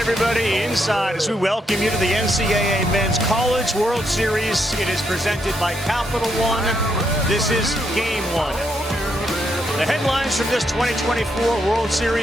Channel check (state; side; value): normal; both; correlation 0.78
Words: inside as we welcome you to the NCAA Men's College World Series. It is presented by Capital One. This is Game 1. The headlines from this 2024 World